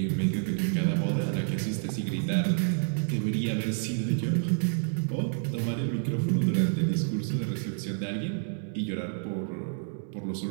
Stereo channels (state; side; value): silent; left; 59 dB below the other